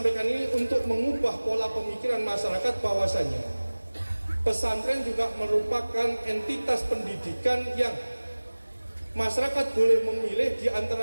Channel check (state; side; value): inverted; both; correlation -1.00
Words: ini untuk mengubah pola pemikiran masyarakat bahwasanya pesantren juga merupakan entitas pendidikan yang masyarakat boleh memilih di